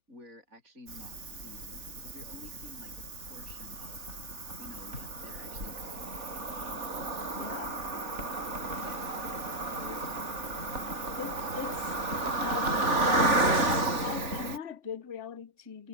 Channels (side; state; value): left; late; 3.4 ms